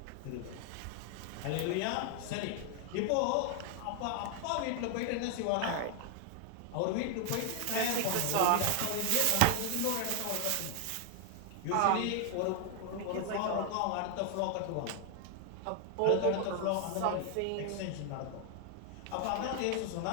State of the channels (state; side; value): different; both; correlation 0.00